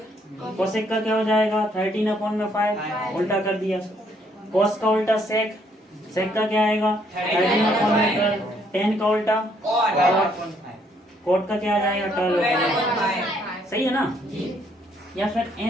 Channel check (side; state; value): both; normal; correlation 0.68